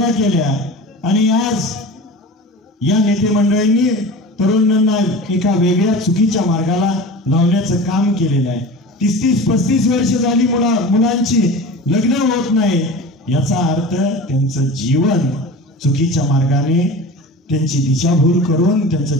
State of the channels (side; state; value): both; normal; correlation 0.34